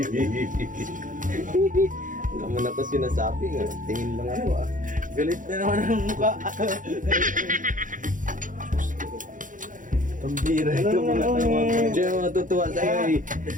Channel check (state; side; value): late; left; 0.38 ms